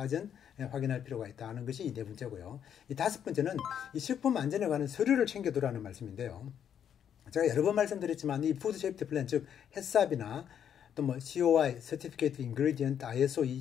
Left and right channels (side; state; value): right; quieter; 8.9 dB